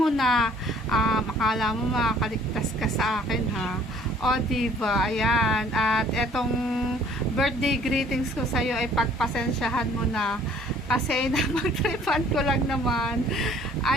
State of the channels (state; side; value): normal; both; correlation 0.56